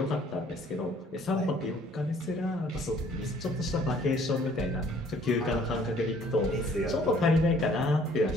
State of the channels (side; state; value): both; normal; correlation 0.58